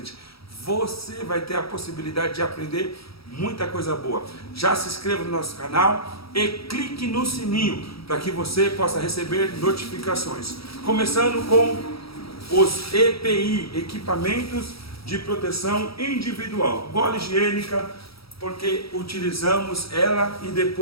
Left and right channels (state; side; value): late; right; 0.76 ms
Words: Você vai ter a possibilidade de aprender muita coisa boa. Já se inscreva no nosso canal e clique no sininho para que você possa receber notificações. Começando com os EPI, equipamentos de proteção individual. Bola higiênica, porque utilizamos ela e